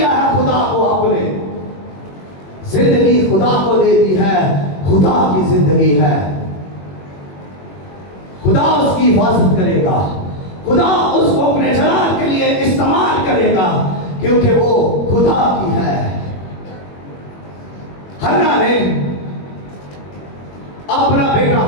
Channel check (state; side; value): late; right; 21 ms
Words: है खुदा को? आपने जिंदगी खुदा को दे दी है, खुदा की जिंदगी है। खुदा उसकी हिफाजत करेगा, खुदा उसको अपने जलाल के लिए इस्तेमाल करेगा, क्योंकि वो खुदा की है। हन्ना ने अपना बेटा